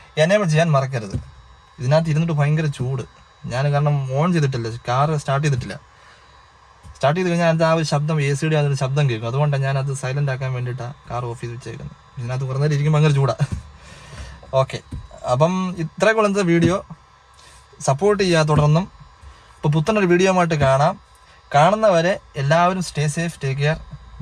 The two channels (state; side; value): identical; both; correlation 1.00